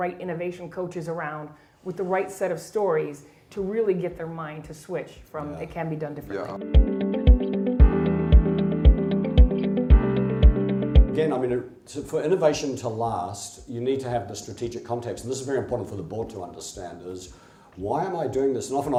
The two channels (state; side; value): identical; both; correlation 1.00